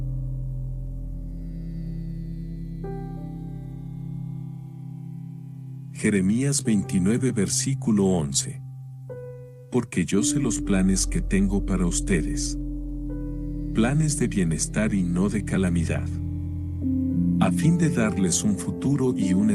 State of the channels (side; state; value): both; identical; correlation 1.00